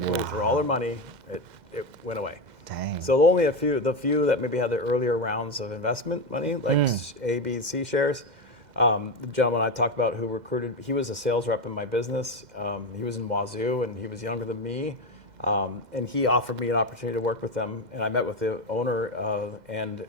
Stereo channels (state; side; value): late; left; 2.1 ms